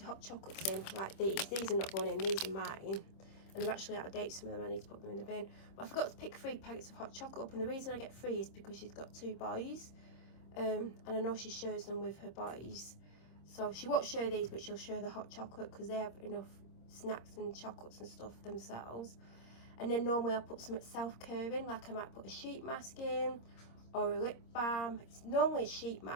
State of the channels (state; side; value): late; right; 26 ms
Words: hot chocolates in like these. These are not going in. These are mine. And they're actually out of date, some of them. I need to put them in the bin. But I forgot to pick 3 packets of hot chocolate up. And the reason I get 3 is because she's got 2 boys. And I know she shares them with her boys. So she won't share these, but she'll share the hot chocolate because they have enough snacks and chocolates and stuff themselves. And then normally I'll put some self-care in, like I might put a sheet mask in or a lip balm. It's normally a sheet